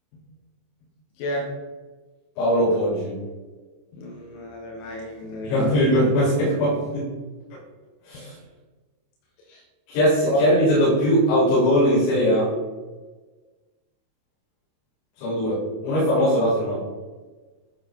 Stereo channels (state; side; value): late; right; 27 ms